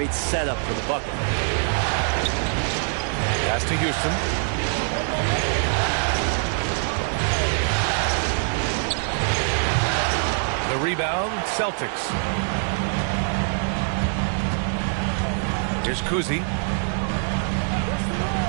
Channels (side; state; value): left; silent; 62 dB below the other